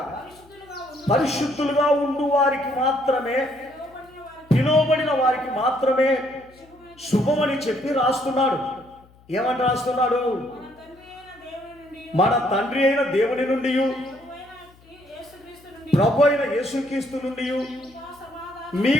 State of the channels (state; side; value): noise; left; hum, 28 dB below the sound